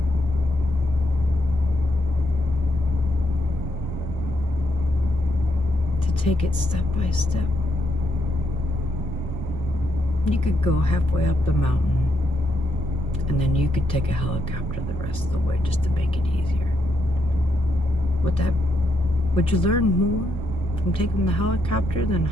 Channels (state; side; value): normal; both; correlation 0.79